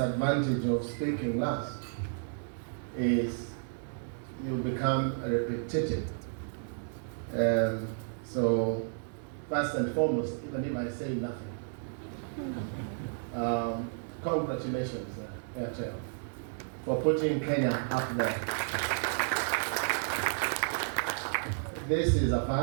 of speaking last is you become repetitive. So, first and foremost, even if I say nothing, congratulations, Airtel, for putting Kenya up there. This is a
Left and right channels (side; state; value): left; silent; digital silence